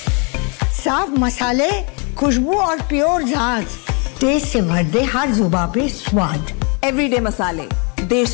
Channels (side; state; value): right; quieter; 35.1 dB